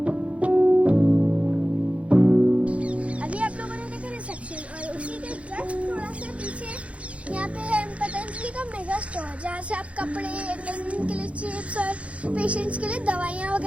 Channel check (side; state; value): left; late; 0.063 ms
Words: जहाँ से आप कपड़े, प्रेग्नेंट के लिए चिप्स और पेशेंट्स के लिए दवाइयाँ